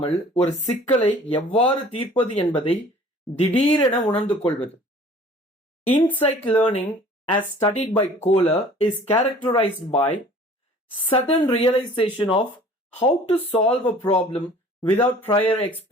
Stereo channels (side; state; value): both; normal; correlation 0.49